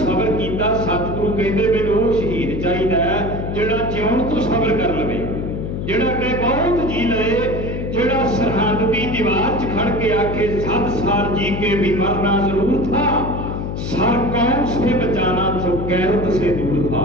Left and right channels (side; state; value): left; noise; hum, 4 dB below the sound